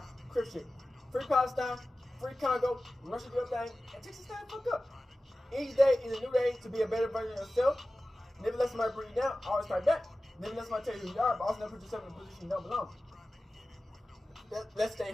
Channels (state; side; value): normal; both; correlation 0.95